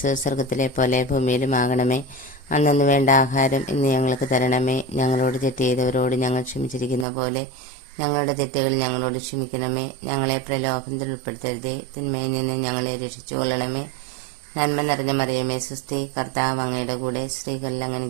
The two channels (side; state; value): left; drops out; at 7.1 s